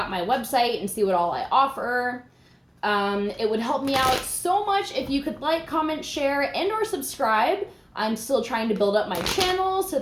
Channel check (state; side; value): identical; both; correlation 1.00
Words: my website and see what all I offer. It would help me out so much if you could like, comment, share, and or subscribe. I'm still trying to build up my channel, so